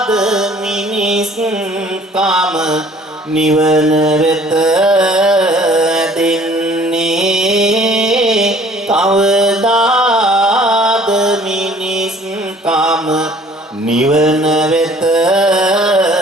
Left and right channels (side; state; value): both; normal; correlation 0.54